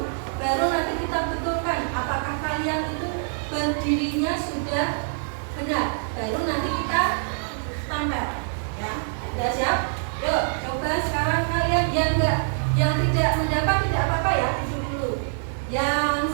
baru nanti kita betulkan apakah kalian itu berdirinya sudah benar. Baru nanti kita tampil. Ya, sudah siap? Yuk, coba sekarang kalian yang tidak mendapat tidak apa-apa ya, duduk dulu.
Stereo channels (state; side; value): silent; left; digital silence